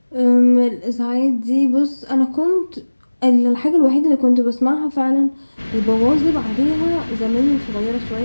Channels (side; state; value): both; inverted; correlation -1.00